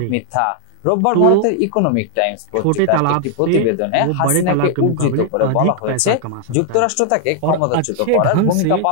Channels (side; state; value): both; different; correlation 0.00